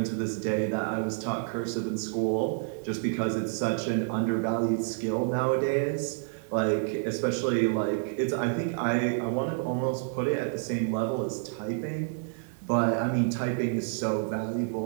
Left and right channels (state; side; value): silent; left; digital silence